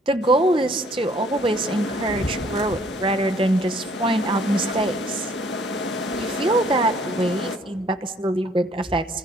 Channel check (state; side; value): normal; both; correlation 0.61